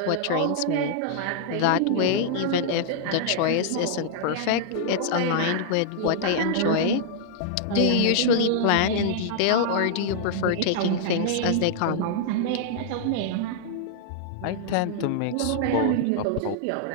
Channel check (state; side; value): different; both; correlation -0.01